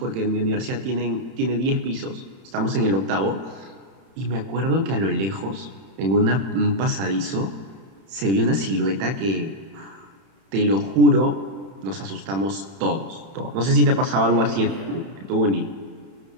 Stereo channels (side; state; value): left; late; 31 ms